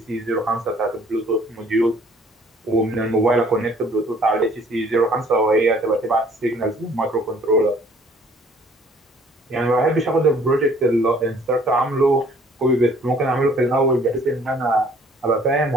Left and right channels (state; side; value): normal; both; correlation 0.57